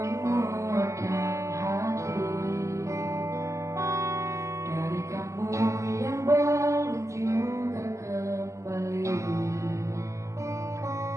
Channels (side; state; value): left; late; 0.14 ms